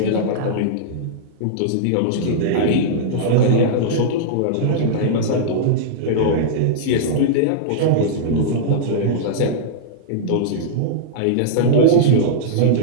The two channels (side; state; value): both; different; correlation -0.02